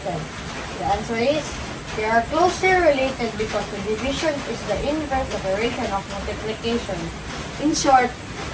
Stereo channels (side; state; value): both; identical; correlation 1.00